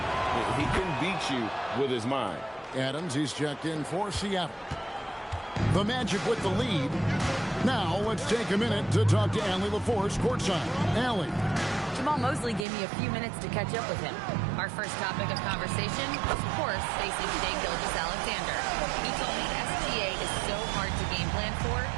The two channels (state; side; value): drops out; left; at 12.7 s